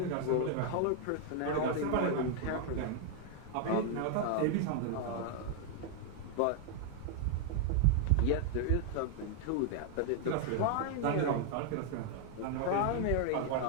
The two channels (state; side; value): different; both; correlation 0.00